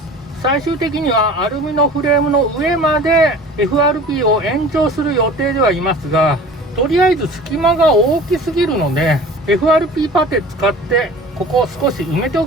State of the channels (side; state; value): both; normal; correlation 0.42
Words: 最終的にはアルミのフレームの上まで FRP を延長する予定ではいますが、とりあえず隙間が大きすぎるので FRP パテ使ってここを少し埋めてお